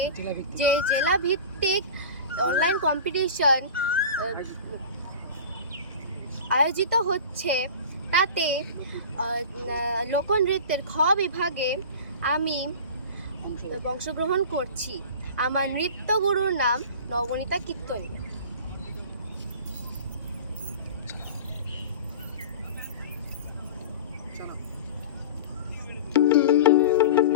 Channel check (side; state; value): both; inverted; correlation -0.35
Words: যে জেলাভিত্তিক অনলাইন কম্পিটিশন আয়োজিত হচ্ছে, তাতে লোকনৃত্যের খ বিভাগে আমি অংশগ্রহণ করছি। আমার নৃত্যগুরুর নাম নবনীতা কীর্তনী।